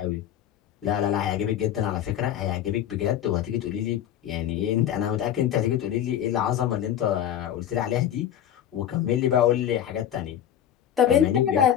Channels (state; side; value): quieter; right; 10.4 dB